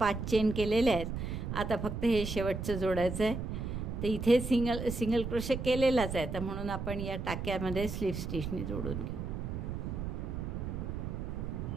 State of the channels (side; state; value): right; noise; rumble, 4 dB below the sound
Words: चेन केलेले आहेत. आता फक्त हे शेवटचं जोडायचं आहे. तर इथे सिंगल क्रोशे केलेलाच आहे, तर म्हणून आपण या टाक्यामध्ये स्लिप स्टिचने जोडून घेऊ.